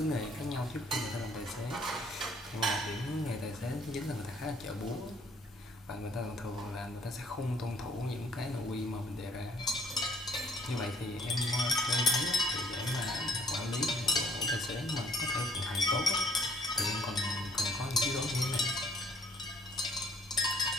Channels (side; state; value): both; normal; correlation 0.62